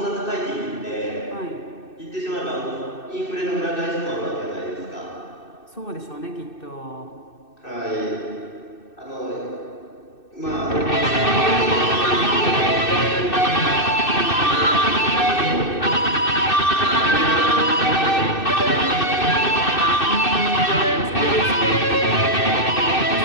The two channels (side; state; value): right; late; 2.6 ms